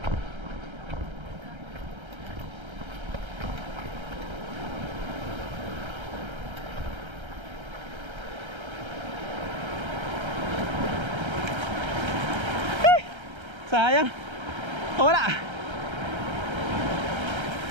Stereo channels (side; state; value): left; late; 1.3 ms